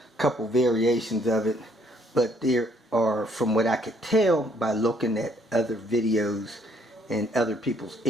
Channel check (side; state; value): both; normal; correlation 0.66